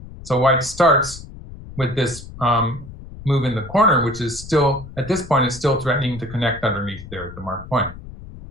So white starts with this move in the corner, which is still, at this point, is still threatening to connect underneath there at the marked point.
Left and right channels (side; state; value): left; noise; rumble, 15 dB below the sound